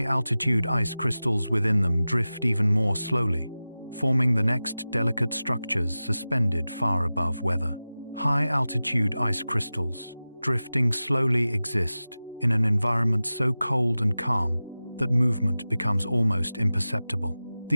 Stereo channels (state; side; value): inverted; both; correlation -0.96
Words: ice crystals within them drift even more slowly, forming the next delicate structures suspended far above weather. High-altitude ice crystals, drifting slowly, exist in an environment so cold and calm that movement becomes almost imperceptible.